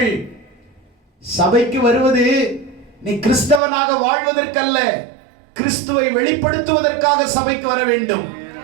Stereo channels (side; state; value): left; drops out; at 3.6 s